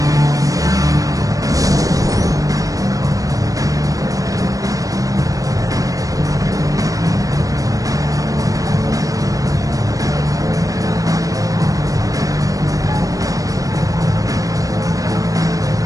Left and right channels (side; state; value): left; late; 0.17 ms